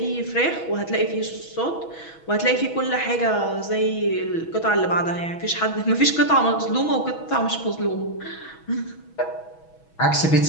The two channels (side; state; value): right; late; 6.2 ms